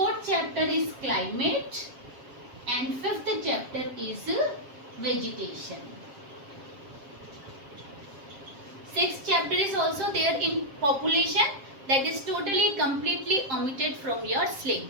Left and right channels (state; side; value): late; left; 7.4 ms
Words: chapter is climate and fifth chapter is vegetation. Sixth chapter is also there in population, that is totally completely omitted from your